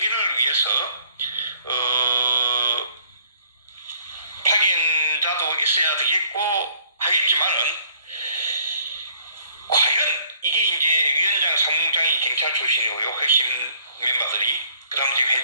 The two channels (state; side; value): inverted; both; correlation -0.61